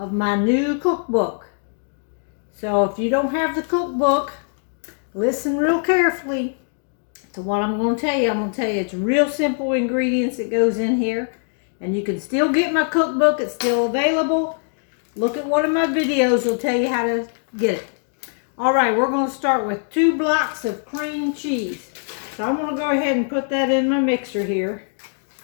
my new cookbook. So if you don't have the cookbook, listen real carefully to what I'm going to tell you. I'm going to tell you it's real simple ingredients that goes in here. And you can still get my cookbook. It's still available. Look at one of my videos. Will tell you how to get it. Alright, we're going to start with 2 blocks of cream cheese. So I'm going to go ahead and put that in my mixer here.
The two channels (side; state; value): right; silent; 62 dB below the other